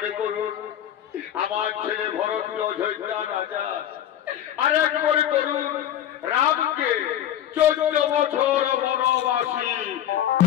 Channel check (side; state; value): right; quieter; 11.1 dB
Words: করুন আমার ছেলে ভরতকে অযোধ্যা রাজা, আর এক মনে করুন রামকে 14 বছর বনবাসী।